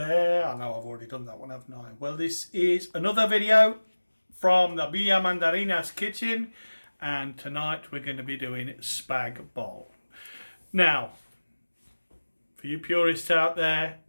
I know I've already done that one, haven't I? Well, this is another video from the Villa Mandarinas kitchen, and tonight we're going to be doing Spag Bol. Now, for you purists out there,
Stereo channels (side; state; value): both; inverted; correlation -1.00